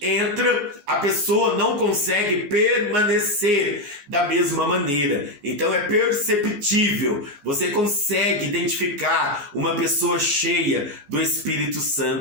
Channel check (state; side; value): late; left; 14 ms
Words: a pessoa não consegue permanecer da mesma maneira. Então, é perceptível. Você consegue identificar uma pessoa cheia do Espírito